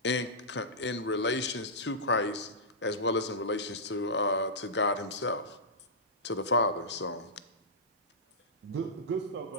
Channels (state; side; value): normal; both; correlation -0.16